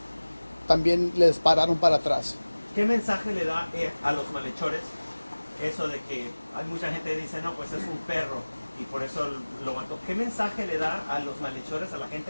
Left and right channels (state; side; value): inverted; both; correlation -1.00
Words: también le dispararon para atrás. ¿Qué mensaje le da a los malhechores eso de que hay mucha gente que dice, no, pues es un perro y por eso lo mató? ¿Qué mensaje le da a los malhechores, a la